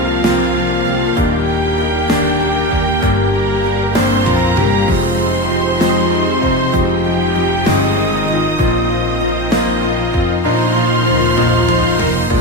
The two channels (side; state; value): both; normal; correlation 0.23